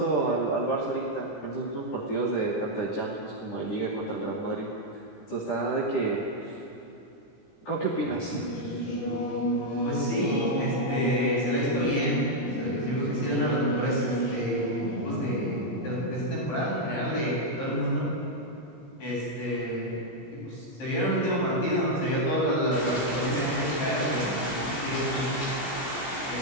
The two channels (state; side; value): late; right; 17 ms